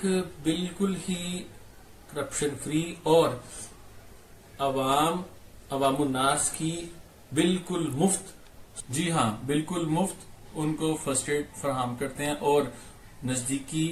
बिल्कुल ही करप्शन फ्री और अवामुन्नास की बिल्कुल मुफ्त, जी हाँ बिल्कुल मुफ्त उनको फर्स्ट एड फराहम करते हैं और नजदीकी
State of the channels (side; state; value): both; identical; correlation 1.00